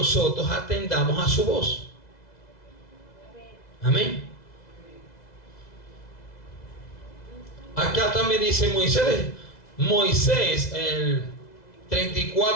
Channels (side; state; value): right; late; 2.0 ms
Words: atendamos a su voz. Amén. Acá también dice Moisés, el